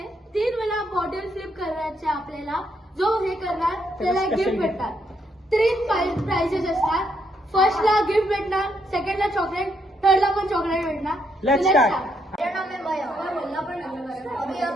3 वेळा बॉटल फ्लिप करायचे आपल्याला. जो हे करणार त्याला गिफ्ट भेटतात. 3 प्राइजेस असतात. फर्स्टला गिफ्ट भेटणार, सेकंडला चॉकलेट, थर्डला पण चॉकलेट भेटणार. Let's start. मेरा नाम है मया और बोलना पण अभी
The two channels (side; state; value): both; normal; correlation 0.76